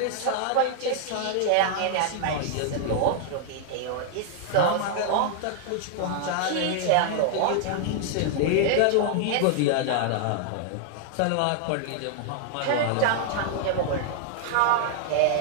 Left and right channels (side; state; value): both; different; correlation 0.00